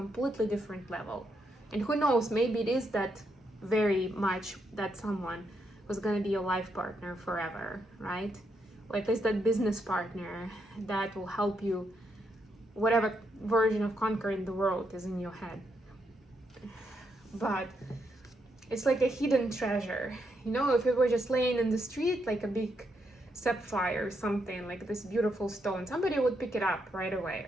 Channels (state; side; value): normal; both; correlation 0.79